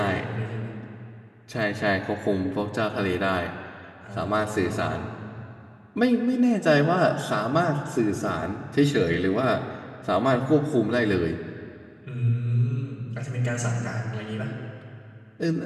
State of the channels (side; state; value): both; identical; correlation 1.00